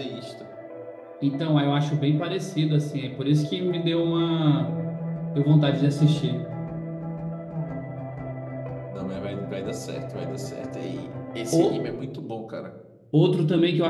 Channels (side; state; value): both; identical; correlation 1.00